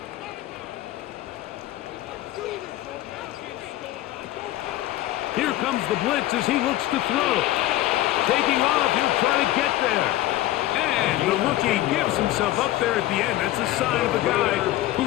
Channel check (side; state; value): right; quieter; 15.4 dB